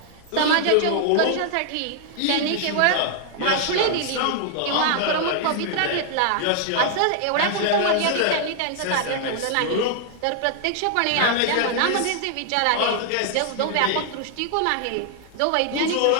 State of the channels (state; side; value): different; both; correlation 0.00